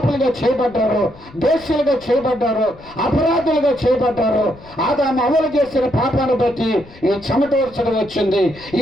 చేయబడ్డారో, దోషులుగా చేయబడ్డారో, అపరాధులుగా చేయబడ్డారో, ఆదాము అమలు చేసిన పాపాన్ని బట్టి ఈ చెమట వర్షం వచ్చింది,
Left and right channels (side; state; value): left; noise; rumble, 22 dB below the sound